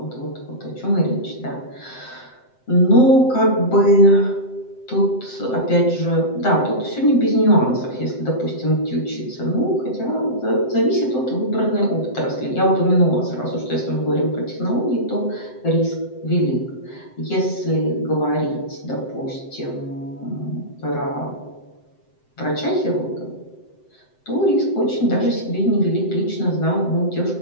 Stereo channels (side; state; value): right; late; 7.8 ms